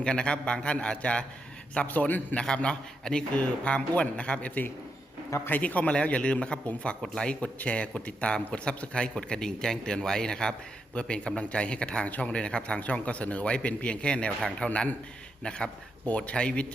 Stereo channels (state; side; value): normal; both; correlation 0.83